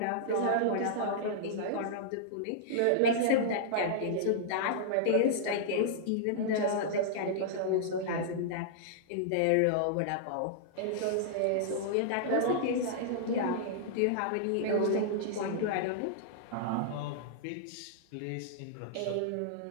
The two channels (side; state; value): both; different; correlation -0.02